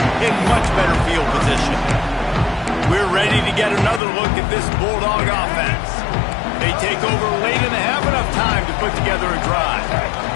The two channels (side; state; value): right; drops out; at 4.0 s